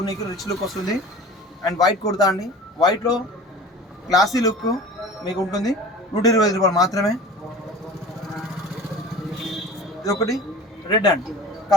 రిచ్ లుక్ వస్తుంది. అండ్ వైట్ కుర్తా అండి, వైట్లో క్లాసీ లుక్ మీకు ఉంటుంది. 125 రూపాయలు మాత్రమే. ఇది ఒకటి రెడ్ అండి,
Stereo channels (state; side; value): normal; both; correlation 0.39